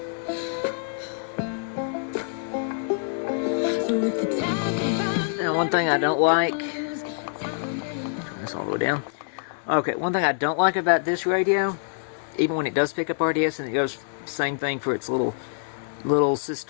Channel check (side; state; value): right; silent; digital silence